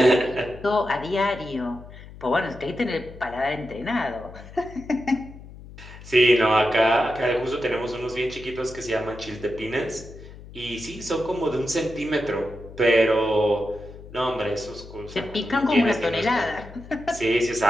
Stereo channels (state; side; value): noise; left; hum, 17 dB below the sound